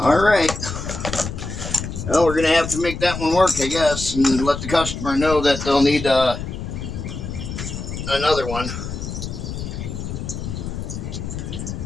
right. Well, we're going to have to make that one work, I guess, and let the customer know that they'll need another one.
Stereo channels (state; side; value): noise; left; rumble, 6 dB below the sound